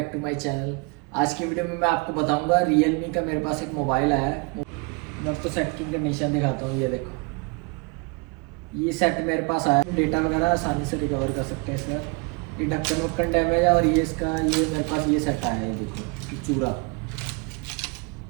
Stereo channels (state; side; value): quieter; left; 29.1 dB